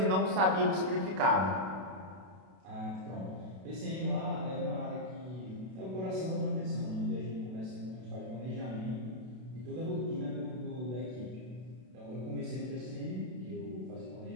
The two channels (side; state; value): left; late; 32 ms